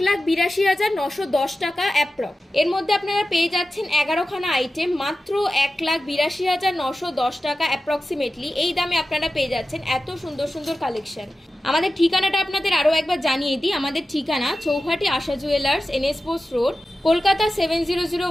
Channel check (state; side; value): normal; both; correlation 0.94